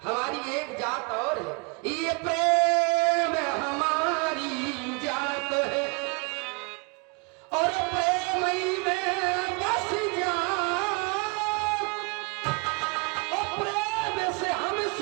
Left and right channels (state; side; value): quieter; left; 31.2 dB